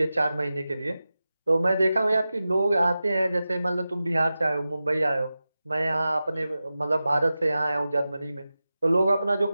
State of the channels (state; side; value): inverted; both; correlation -0.94